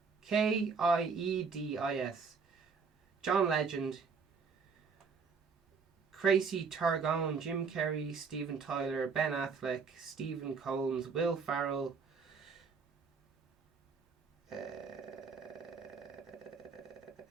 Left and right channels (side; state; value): left; quieter; 5.2 dB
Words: Kiedis. John Legend. Tracy Targone, Jim Carrey, Steven Tyler, Ben Affleck, Stephen Combs, Will Ferrell,